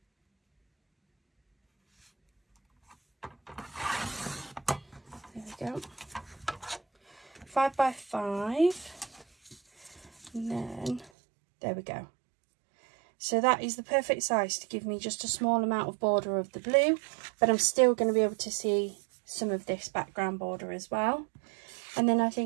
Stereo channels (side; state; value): left; drops out; at 11.1 s